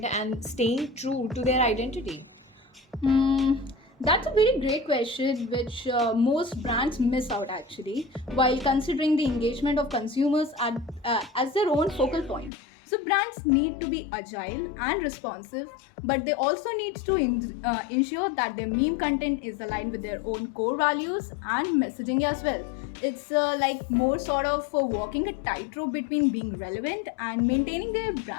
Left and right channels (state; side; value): drops out; right; at 12.5 s